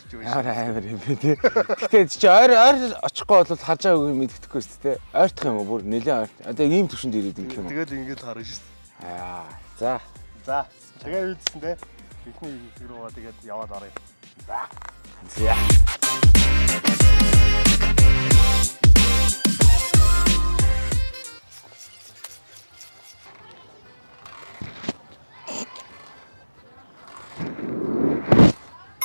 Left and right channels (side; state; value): both; inverted; correlation -1.00